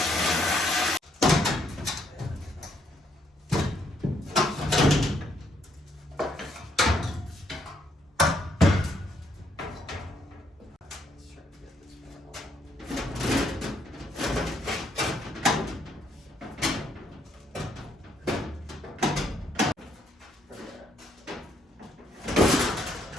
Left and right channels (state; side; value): normal; both; correlation 0.71